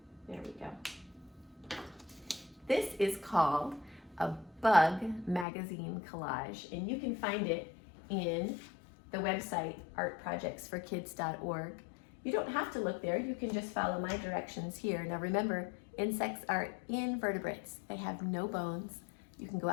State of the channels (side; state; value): right; drops out; at 5.5 s